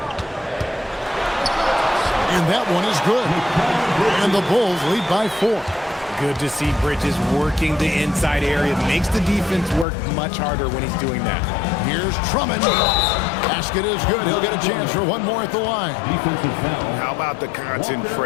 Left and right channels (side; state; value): right; drops out; at 9.9 s